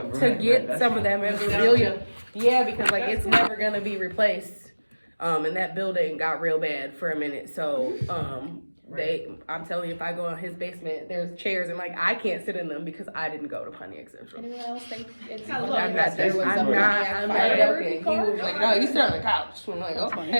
get some of that memorabilia. Yeah, because like it's never gonna be replaced. And that building got real bad for a minute. So I'm telling you, if I go in his basement, there's chairs and like I can't sit in them because I didn't go to Pontiac Central. Anyone else think it's I'm I'm not joking. He was like, no, you sit on the couch. I'm like,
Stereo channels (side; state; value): both; inverted; correlation -1.00